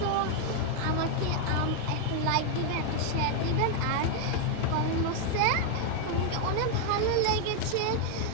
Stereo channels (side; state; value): both; different; correlation 0.01